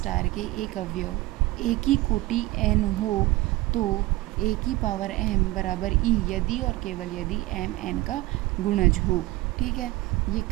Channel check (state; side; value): quieter; left; 18.8 dB